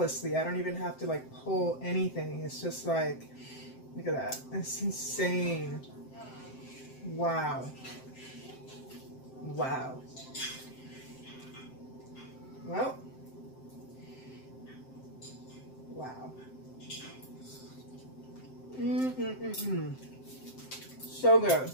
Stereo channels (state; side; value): late; right; 7.7 ms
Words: I don't even have to like pull anything. It's just like, look at that. It's insane. Wow. Wow. Well, wow. So good.